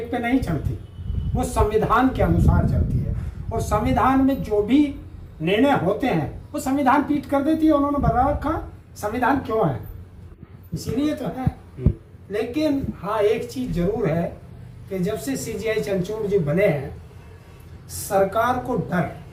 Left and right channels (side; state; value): both; identical; correlation 1.00